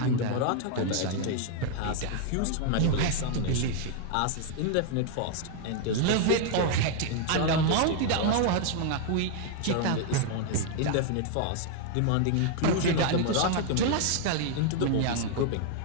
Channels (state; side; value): different; both; correlation 0.00